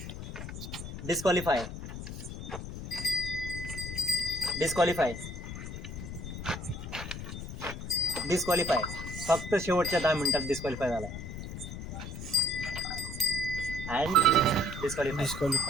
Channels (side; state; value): left; noise; rumble, 8 dB below the sound